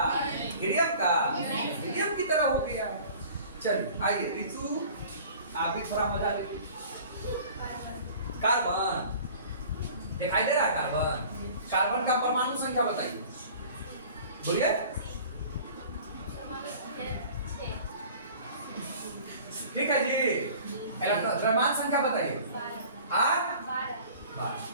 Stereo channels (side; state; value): both; inverted; correlation -0.45